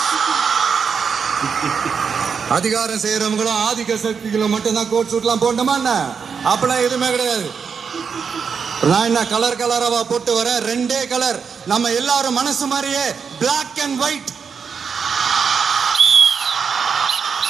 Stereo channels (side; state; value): left; quieter; 6.2 dB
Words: அதிகாரம் செய்யறவங்களும் ஆதிக்க சக்திகளும் மட்டும்தான் கோட் சூட் எல்லாம் போடணுமா என்ன? அப்பெல்லாம் எதுவுமே கிடையாது. நான் என்ன கலர் கலராவா போட்டு வரேன்? ரெண்டே கலர், நம்ம எல்லாரும் மனசு மாதிரியே பிளாக் அண்ட் ஒயிட்.